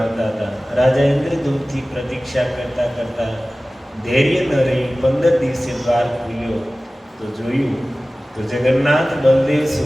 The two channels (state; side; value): normal; both; correlation 0.97